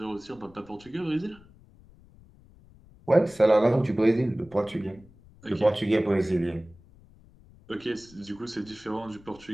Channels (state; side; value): noise; left; rumble, 25 dB below the sound